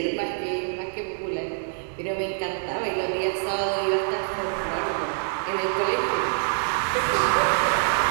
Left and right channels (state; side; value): silent; left; digital silence